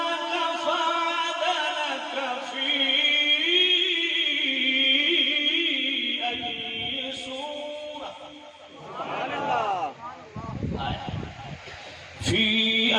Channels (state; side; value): identical; both; correlation 1.00